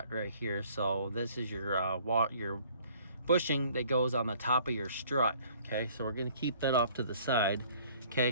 right here. So this is your bushing that goes on the top of your strut, okay? So we're gonna keep that off to the side,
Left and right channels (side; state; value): both; inverted; correlation -0.57